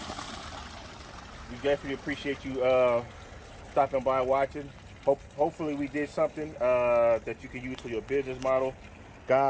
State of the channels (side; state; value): both; identical; correlation 1.00